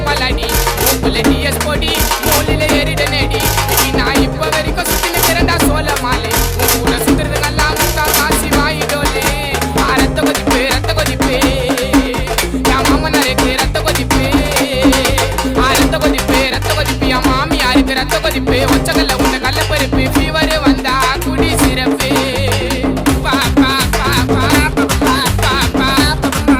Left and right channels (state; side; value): identical; both; correlation 1.00